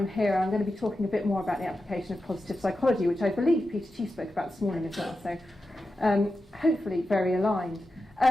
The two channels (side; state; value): both; normal; correlation 0.90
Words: here. I'm going to be talking a bit more about the application of positive psychology, which I believe Peter Chief spoke about this morning as well, so hopefully very aligned.